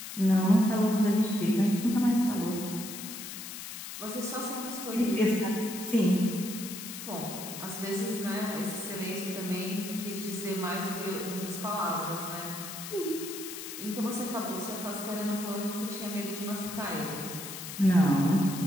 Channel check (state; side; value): noise; left; hiss, 9 dB below the sound